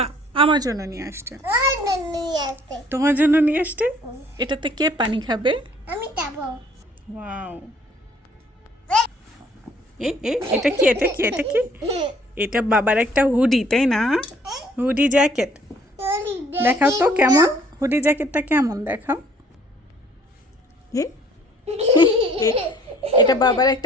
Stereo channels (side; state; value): both; normal; correlation 0.58